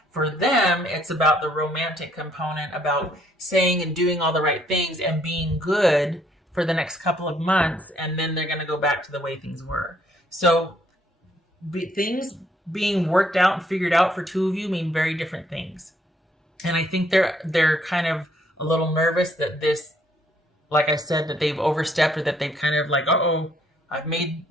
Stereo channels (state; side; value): normal; both; correlation 0.68